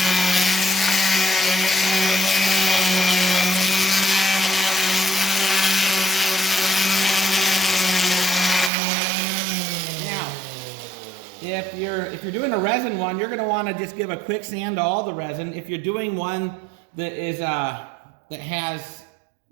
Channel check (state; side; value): drops out; left; at 8.7 s